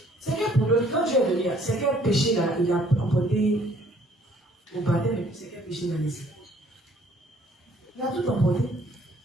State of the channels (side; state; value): both; normal; correlation 0.60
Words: C'est quel problème? Quand Dieu est venu, c'est quel péché là, il a emporté au baptême, et puis c'est quel péché il a laissé? Il a tout emporté.